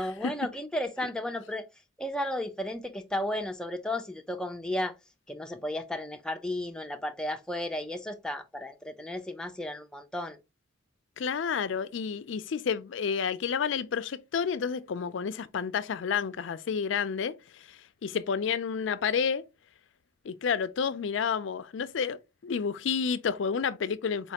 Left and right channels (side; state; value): right; quieter; 4.5 dB